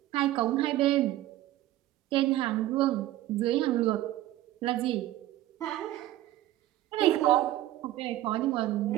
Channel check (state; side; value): quieter; left; 14.9 dB